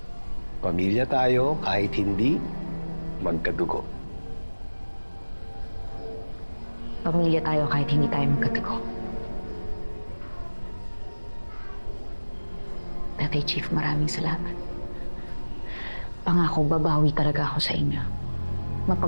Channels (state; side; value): inverted; both; correlation -1.00